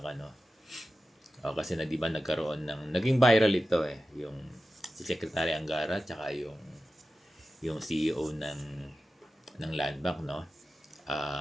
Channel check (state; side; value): normal; both; correlation 0.93